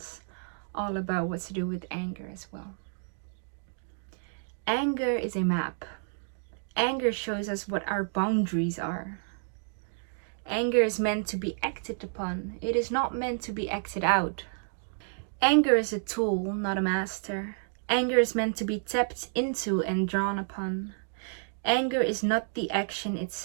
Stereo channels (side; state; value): left; silent; digital silence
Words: all about what to do with anger as well. Anger is a map. Anger shows us what our boundaries are. Anger is meant to be acted upon. It is not meant to be acted out. Anger is a tool, not a master. Anger is meant to be tapped into and drawn upon. Anger is not the action